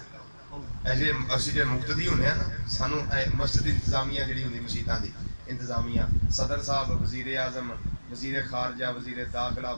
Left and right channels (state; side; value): inverted; both; correlation -1.00